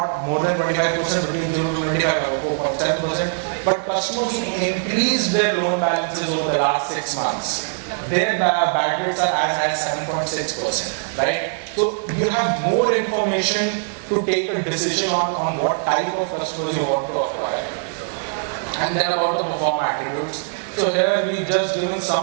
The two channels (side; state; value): left; silent; digital silence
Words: more than 25%, between 0 to 25 have a 4.7%. But customers who've increased their loan balances over the last 6 months, their bad rates are as high as 7.6%, right? So you have more information to take a decision on what type of customers you want to acquire. And then about the perform attributes. So here we've just given some